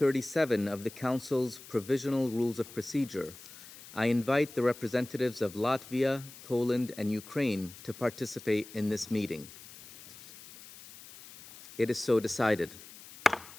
of the Council's Provisional Rules of Procedure, I invite the representatives of Latvia, Poland, and Ukraine to participate in this meeting. It is so decided.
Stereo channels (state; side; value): noise; left; hiss, 18 dB below the sound